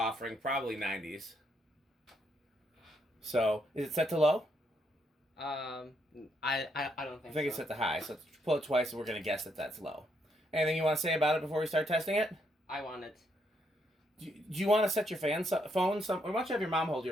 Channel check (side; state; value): both; normal; correlation 0.76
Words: probably 90s. So, is it set to low? I don't think so. I think it's set to high, so let's pull it twice and we're going to guess that that's low. Anything you want to say about it before we start testing it? I want it. Do you want to set your phone or why don't you have your mom hold